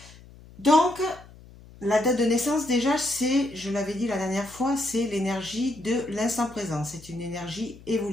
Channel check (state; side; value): noise; left; hum, 21 dB below the sound